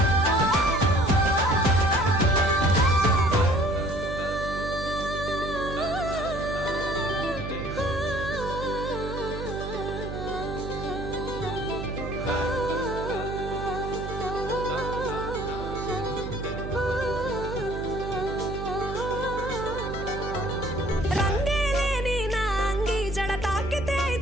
రంగేలేని నా అంగి జడ తాకితే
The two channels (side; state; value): right; noise; hum, 7 dB below the sound